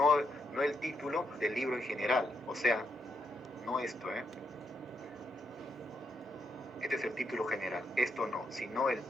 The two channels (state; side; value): normal; both; correlation 0.79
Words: el título del libro en general, o sea, no esto, este es el título general, esto no, sino el